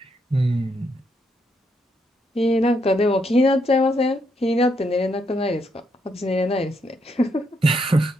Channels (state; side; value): normal; both; correlation 0.77